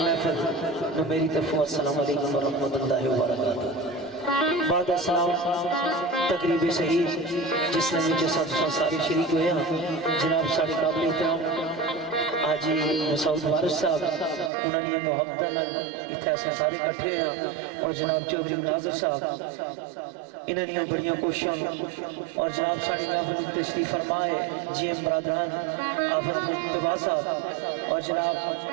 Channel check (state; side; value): drops out; left; at 14.5 s